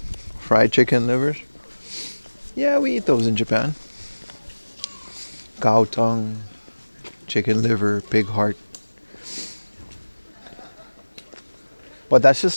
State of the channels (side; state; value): both; inverted; correlation -1.00